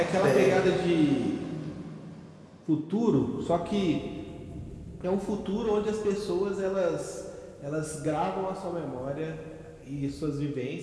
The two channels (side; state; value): both; identical; correlation 1.00